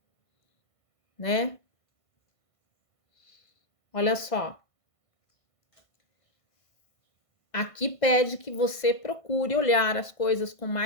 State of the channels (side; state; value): right; late; 1.5 ms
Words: Né? Olha só. Aqui pede que você procure olhar as coisas com